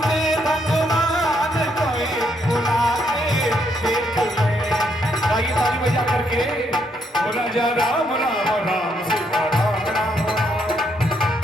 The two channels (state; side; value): normal; both; correlation 0.74